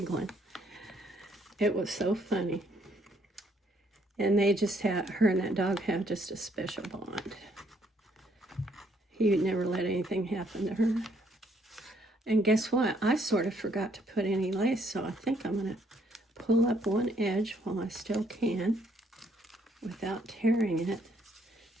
It was so funny. And they just her and that dog have just a special bond. He would never let anything happen to her. And guess what? I sort of forgot to put any lace, so I think I'm going to pull up one edge while I still can without tearing it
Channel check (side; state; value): both; normal; correlation 0.68